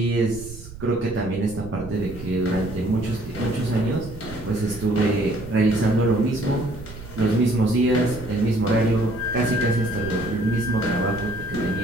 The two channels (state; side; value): noise; right; rumble, 15 dB below the sound